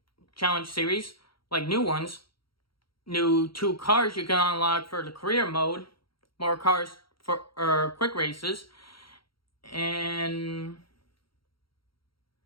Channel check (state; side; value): late; right; 0.74 ms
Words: challenge series, like new ones, new 2 cars you can unlock for the career mode, more cars for quick races, and